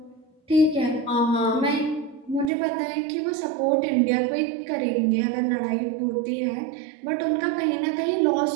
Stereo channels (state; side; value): drops out; left; at 2.5 s